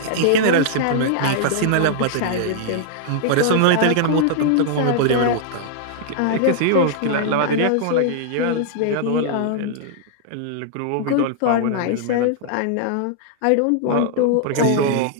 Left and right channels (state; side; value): different; both; correlation -0.01